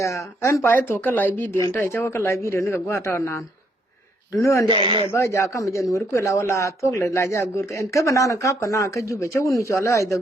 an pa to ka lai video nta cha ka lai video ni ka gwa ta nan. Dunu ande me ba ja ka me jan wur ku la wala to le la ja gur en ka bana na kap kana ka jube cha wunu cho la ai da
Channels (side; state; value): both; normal; correlation 0.72